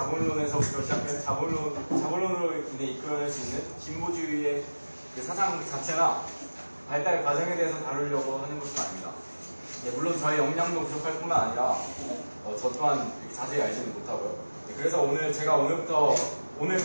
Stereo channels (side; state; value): both; inverted; correlation -1.00